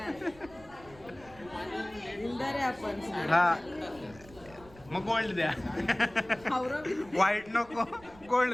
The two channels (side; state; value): right; noise; rumble, 22 dB below the sound